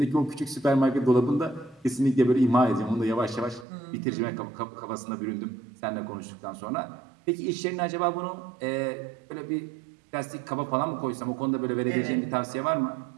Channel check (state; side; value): drops out; left; at 3.7 s